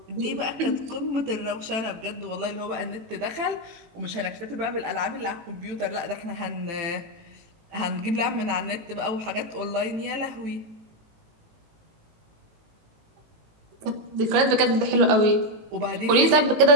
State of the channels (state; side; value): late; left; 18 ms